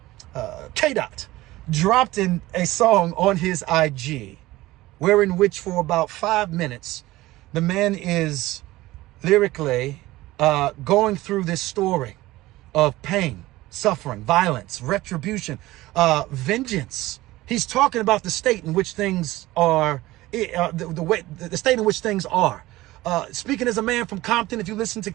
K-Dot, dropped in a song on his IG, wherein which for about 5 minutes, the man is lyrically going through this story of pain, suffering, violence, retribution, vengeance. He's talking about the state in which things are, the state in which things are. Speaking as a man from Compton, if you listen to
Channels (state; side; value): quieter; left; 18.0 dB